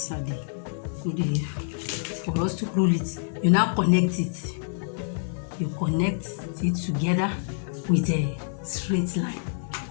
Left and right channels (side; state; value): right; silent; digital silence